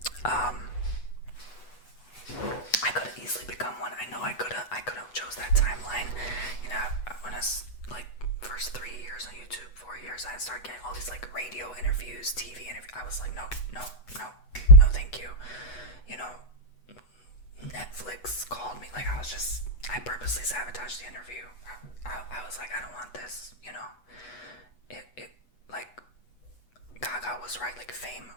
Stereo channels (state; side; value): late; right; 8.2 ms